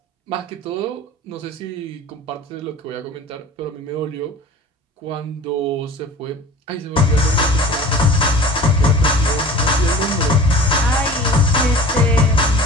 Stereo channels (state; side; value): normal; both; correlation 0.42